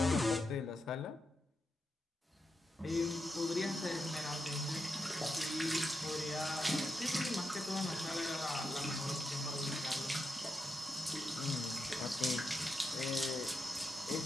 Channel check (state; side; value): normal; both; correlation 0.86